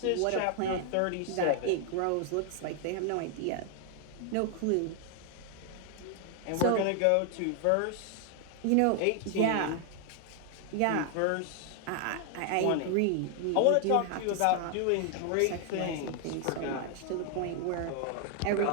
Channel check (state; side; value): different; both; correlation 0.00